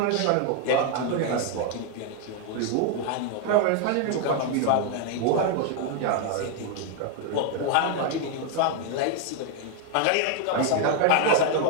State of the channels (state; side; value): different; both; correlation 0.00